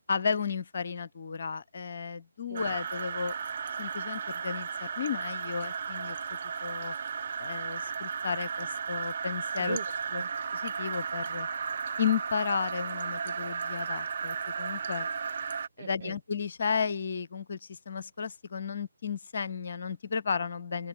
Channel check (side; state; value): both; inverted; correlation -0.75